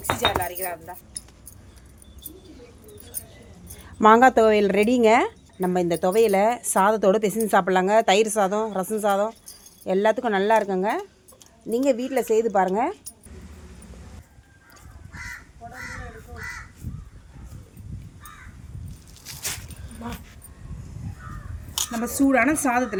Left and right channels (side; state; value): both; identical; correlation 1.00